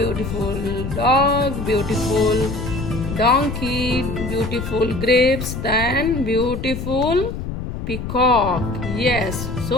dog, beautiful donkey, beautiful grapes, then beautiful peacock. Yes,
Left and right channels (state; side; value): noise; left; rumble, 6 dB below the sound